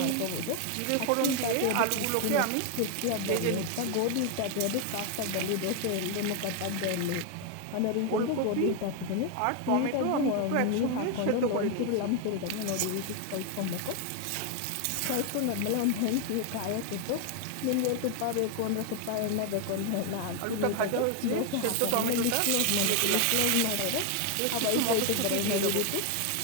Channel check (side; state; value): both; different; correlation 0.01